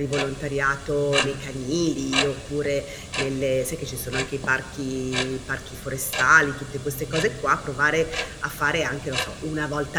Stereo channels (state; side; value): identical; both; correlation 1.00